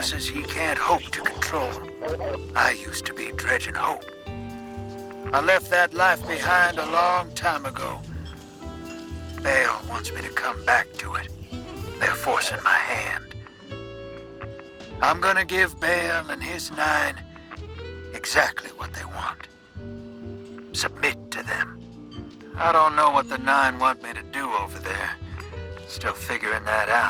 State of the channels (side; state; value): both; identical; correlation 1.00